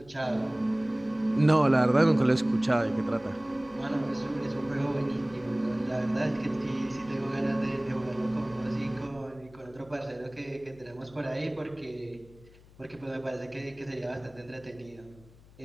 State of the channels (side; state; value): left; noise; hum, 24 dB below the sound